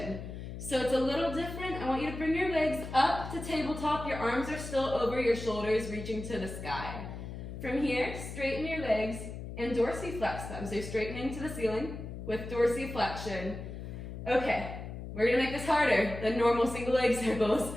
So it's a little different. I want you to bring your legs up to tabletop. Your arms are still over your shoulders, reaching to the sky. From here, straighten your legs and dorsiflex them. So you're straightening to the ceiling with dorsiflexion. Okay, we're gonna make this harder than normal single leg circles.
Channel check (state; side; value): noise; left; hum, 9 dB below the sound